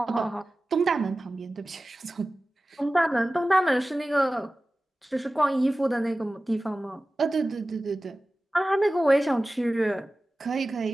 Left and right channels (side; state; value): both; normal; correlation 0.96